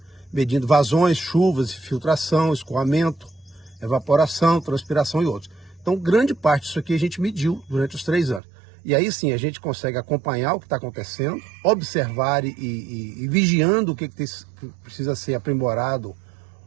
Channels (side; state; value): left; drops out; at 8.4 s